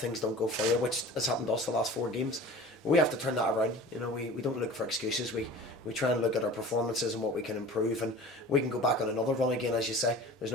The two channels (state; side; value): normal; both; correlation 0.40